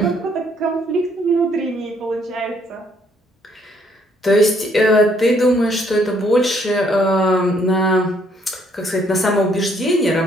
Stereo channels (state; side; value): normal; both; correlation 0.67